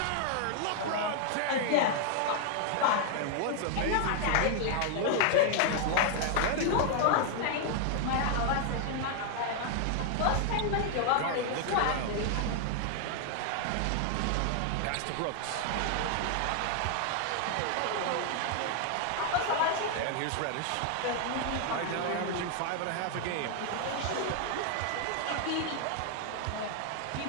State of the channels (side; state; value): both; different; correlation 0.00